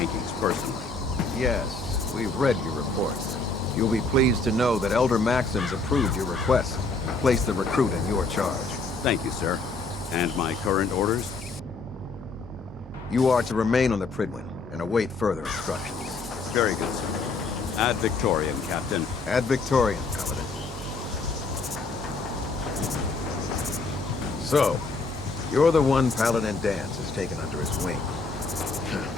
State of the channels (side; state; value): right; quieter; 3.6 dB